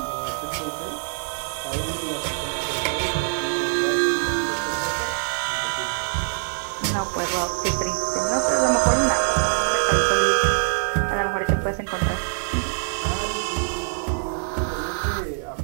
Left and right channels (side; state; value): left; silent; digital silence